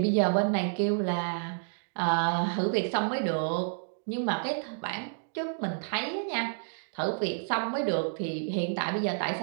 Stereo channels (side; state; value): left; silent; digital silence